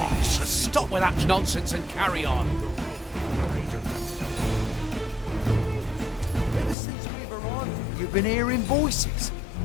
stop with that nonsense and carry on. Ever since we were on, you've been hearing voices.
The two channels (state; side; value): drops out; right; at 6.8 s